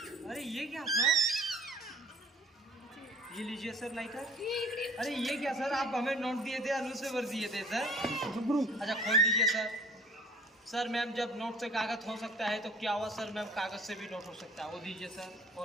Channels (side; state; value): both; normal; correlation 0.51